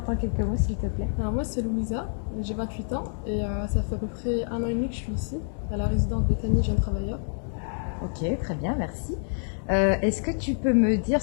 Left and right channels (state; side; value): silent; right; digital silence